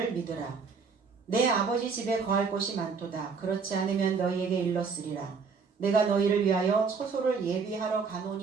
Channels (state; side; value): quieter; left; 5.3 dB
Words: 믿으라. 내 아버지 집에 거할 곳이 많도다. 그렇지 않으면 너희에게 일렀으리라. 내가 너희를 위하여 처소를 예비하러